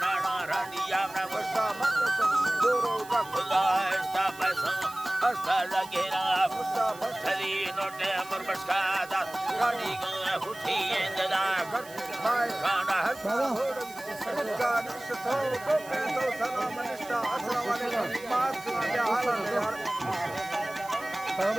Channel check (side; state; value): right; noise; hiss, 19 dB below the sound